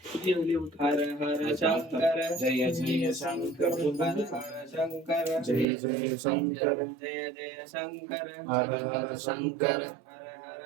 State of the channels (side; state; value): left; drops out; at 5.7 s